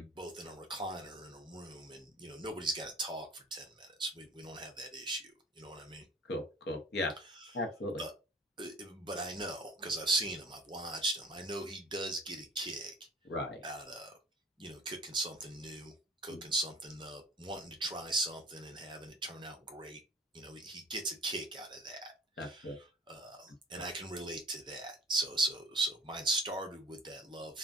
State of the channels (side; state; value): both; normal; correlation 0.48